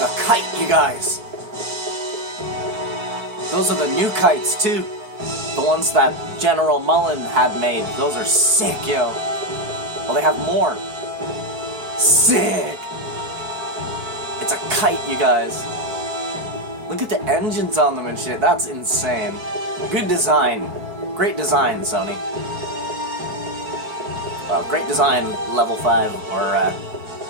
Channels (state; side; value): late; left; 4.6 ms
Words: kite, you guys. Those are the new kites, too. The ones that General Mullen had made. Those are sick, yo. Well, they have more. Sick! It's a kite, you guys. Look at the engines on them and shit. That's insane. Good design. Great design, Sony. Well, great design, level 5, or,